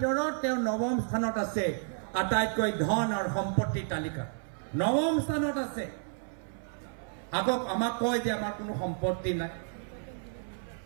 তেওঁ নৱম স্থানত আছে আটাইতকৈ ধন আৰু সম্পত্তিৰ তালিকা নৱম স্থানত আছে আকৌ আমাক কয় যে আমাৰ কোনো সম্পত্তি নাই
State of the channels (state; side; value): silent; left; 57 dB below the other